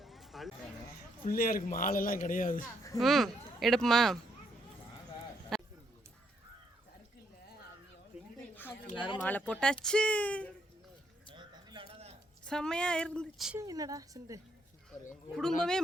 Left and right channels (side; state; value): both; normal; correlation 0.74